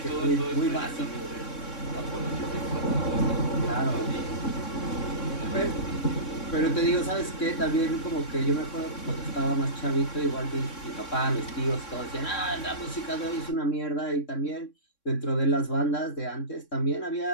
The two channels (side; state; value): right; late; 3.6 ms